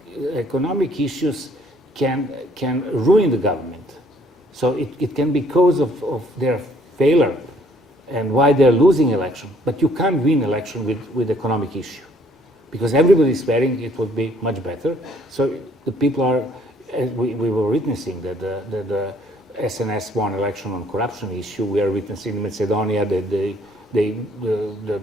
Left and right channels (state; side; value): normal; both; correlation 0.62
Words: issues can ruin the government. So it can be cause of their failure and why they're losing election. But you can't win election with economic issue, because everybody is swearing it would be much better. So the people are, we were witnessing that the SNS won election on corruption issue. We are witnessing in Macedonia that they